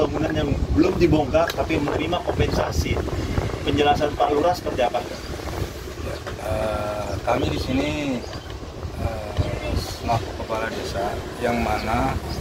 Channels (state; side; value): identical; both; correlation 1.00